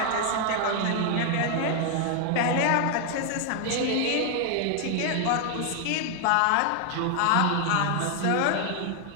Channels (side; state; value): both; different; correlation 0.00